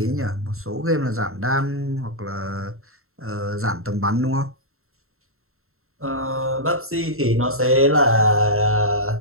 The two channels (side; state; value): left; late; 0.62 ms